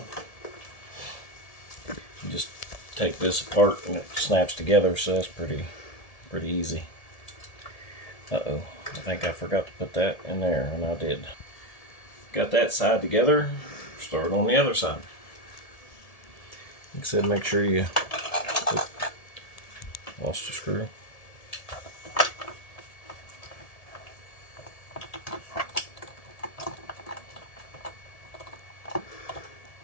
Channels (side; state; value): right; late; 1.7 ms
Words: You just take this apart and it snaps together, so that's pretty easy. Uh-oh, I think I forgot to put that in there, and I did. Got that side together, start on the other side. Like I said, make sure you lost a screw.